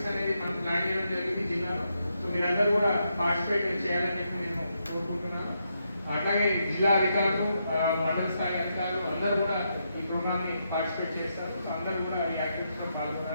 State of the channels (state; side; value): inverted; both; correlation -0.81